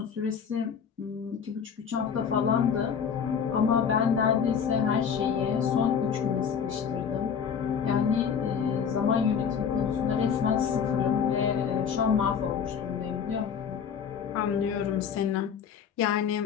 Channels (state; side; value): quieter; right; 7.2 dB